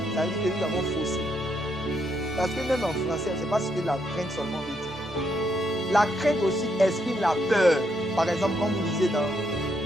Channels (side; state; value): both; normal; correlation 0.76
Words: ça veut dire que nous avons faussé. parce que même en français, c'est pas ce que la crainte seulement veut dire. La crainte aussi exprime la peur. Par exemple, quand vous lisez dans